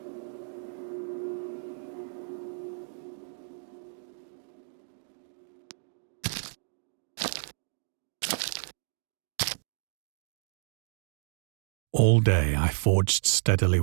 All day I forged steadily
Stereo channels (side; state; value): left; silent; digital silence